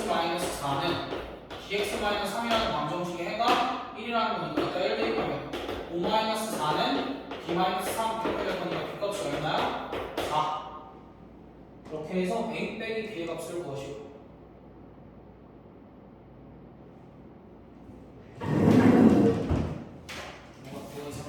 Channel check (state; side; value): identical; both; correlation 1.00